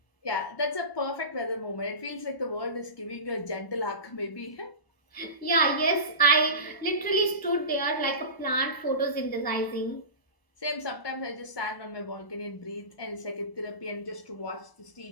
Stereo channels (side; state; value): right; late; 1.0 ms